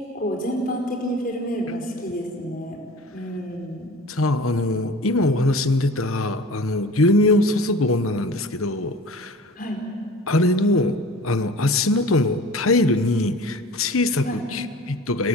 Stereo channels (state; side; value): normal; both; correlation 0.41